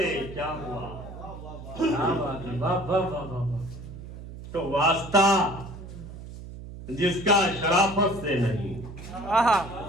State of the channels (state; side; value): noise; right; hum, 13 dB below the sound